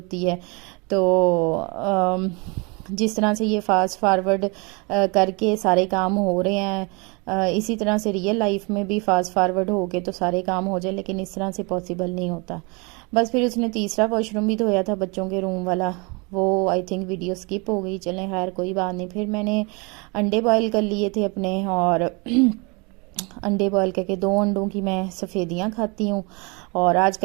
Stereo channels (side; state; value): left; quieter; 30.0 dB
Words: है। तो जिस तरह से ये फास्ट फॉरवर्ड करके सारे काम हो रहे हैं, इसी तरह से रियल लाइफ में भी फास्ट फॉरवर्ड हो के तो सारे काम हो जाए, लेकिन इस तरह से पॉसिबल नहीं होता। बस फिर उसने तीसरा वॉशरूम भी धोया था, बच्चों के रूम वाला, वो आई थिंक वीडियो स्किप हो गई, चलें खैर कोई बात नहीं। फिर मैंने अंडे बॉयल कर लिए थे अपने, और अंडे बॉयल करके 2 अंडों की मैं सफ़ेदियाँ खाती हूँ। और